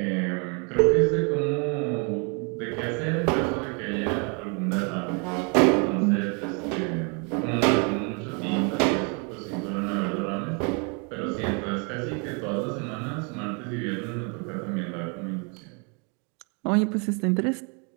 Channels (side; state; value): left; quieter; 35.2 dB